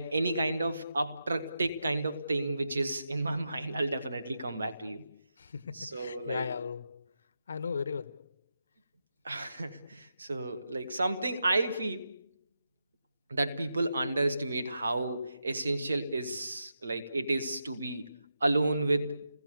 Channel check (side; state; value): both; inverted; correlation -0.87